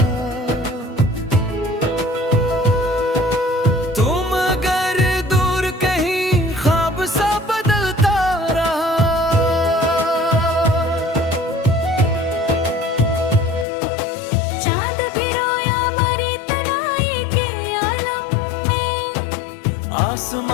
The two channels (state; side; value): drops out; right; at 13.7 s